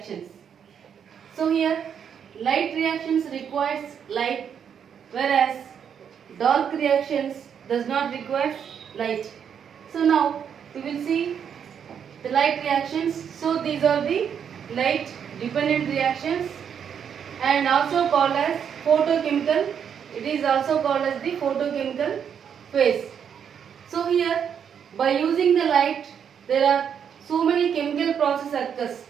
So here light reactions requires light, whereas dark reactions does not require light. So now we will see the light reactions. So these are the light dependent reactions and also called as photochemical. It is also called as the photochemical phase. So here by using the light there are so many chemical processes occurs.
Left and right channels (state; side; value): quieter; left; 7.9 dB